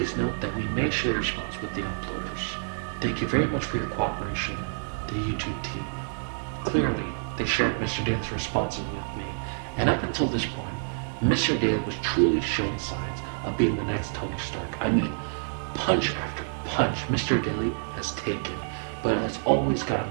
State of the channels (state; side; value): silent; left; 59 dB below the other